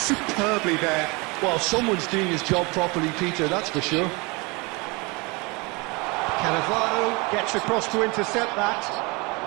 there. Well, someone's doing his job properly, Peter, that's for sure. Cannavaro gets across to intercept that.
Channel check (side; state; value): left; quieter; 27.3 dB